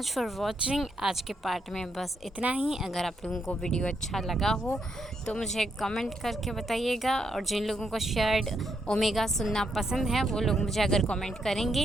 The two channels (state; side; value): normal; both; correlation 0.78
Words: for watching. आज के पार्ट में बस इतना ही। अगर आप लोगों को वीडियो अच्छा लगा हो तो मुझे कमेंट करके बताइएगा। और जिन लोगों को शेयर्ड ओमेगा सुनना पसंद है वो लोग मुझे अगर कमेंट